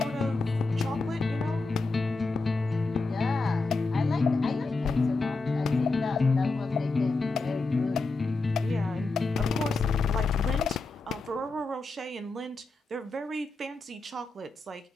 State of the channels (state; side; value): quieter; right; 3.6 dB